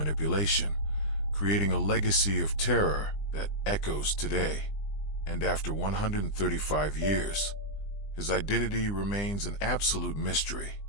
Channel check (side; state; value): right; late; 20 ms